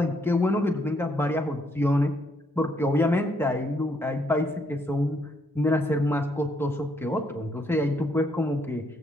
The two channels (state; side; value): normal; both; correlation 0.72